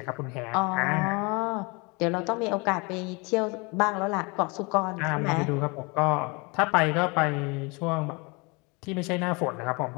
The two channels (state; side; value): quieter; right; 28.9 dB